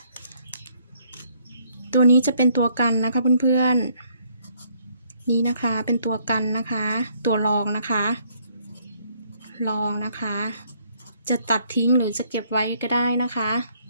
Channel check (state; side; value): inverted; both; correlation -0.67